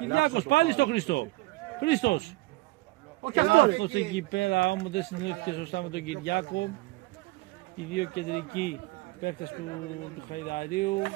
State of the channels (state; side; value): quieter; left; 21.5 dB